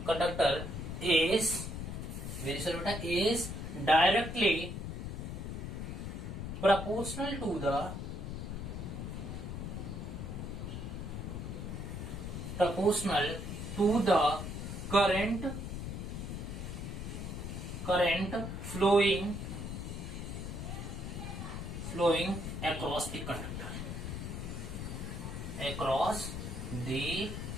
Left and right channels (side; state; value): left; noise; rumble, 5 dB below the sound